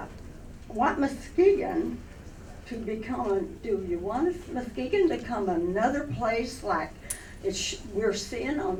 want Muskegon to become, do you want Muskegon to become another place like we're seeing on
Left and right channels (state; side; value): identical; both; correlation 1.00